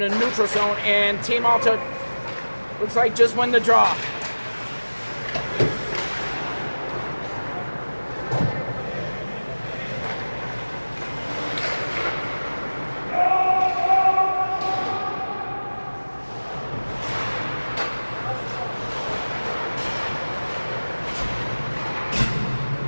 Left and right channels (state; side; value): inverted; both; correlation -1.00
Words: the neutral zone, and Team Alta looks like just win the draw.